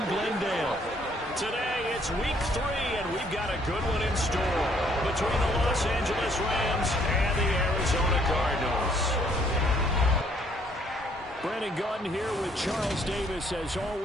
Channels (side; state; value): both; normal; correlation 0.65